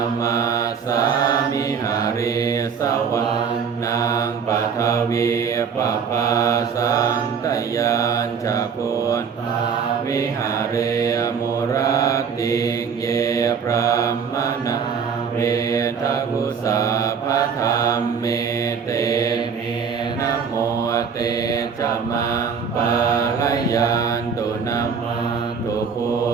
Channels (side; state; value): left; quieter; 6.3 dB